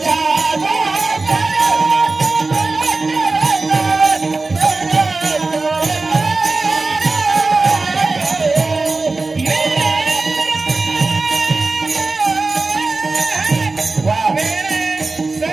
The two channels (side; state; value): left; quieter; 3.6 dB